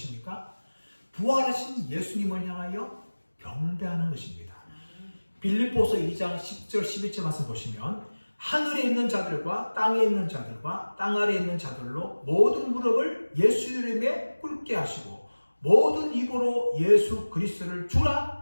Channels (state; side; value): inverted; both; correlation -1.00